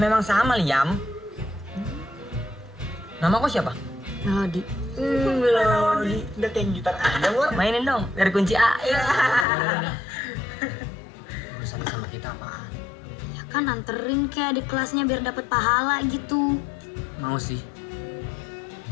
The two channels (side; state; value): right; drops out; at 9.5 s